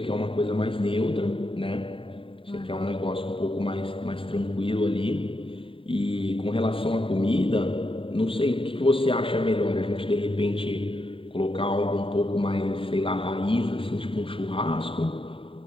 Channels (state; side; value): late; right; 0.25 ms